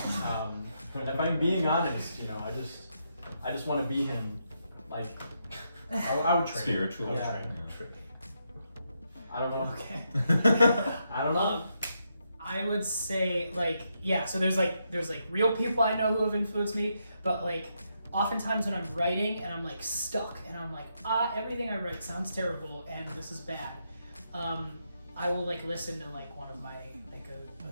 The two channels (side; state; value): both; inverted; correlation -0.81